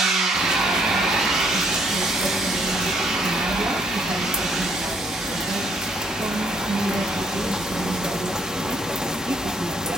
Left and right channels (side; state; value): both; normal; correlation 0.68